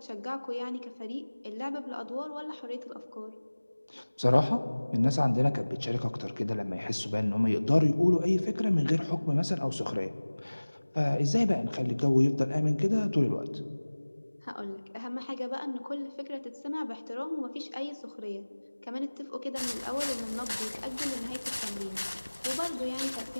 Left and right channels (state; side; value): inverted; both; correlation -1.00